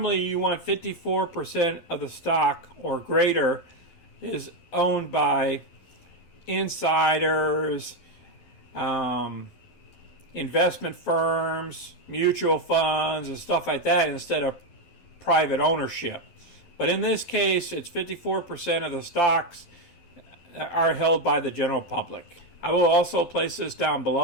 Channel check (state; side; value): late; right; 12 ms